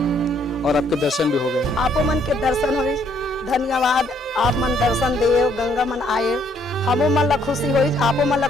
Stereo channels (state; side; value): normal; both; correlation 0.67